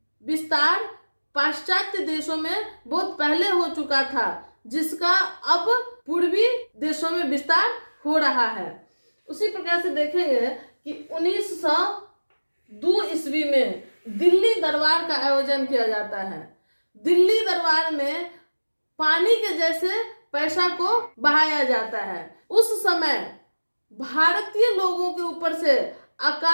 विस्तार पाश्चात्य देशों में बहुत पहले हो चुका था, जिसका अब पूर्वी देशों में विस्तार हो रहा है। उसी प्रकार से देखेंगे कि 1902 ईस्वी में दिल्ली दरबार का आयोजन किया जाता है। दिल्ली दरबार में पानी के जैसे पैसा को बहाया जाता है। उस समय भारतीय लोगों के ऊपर से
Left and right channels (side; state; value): both; inverted; correlation -1.00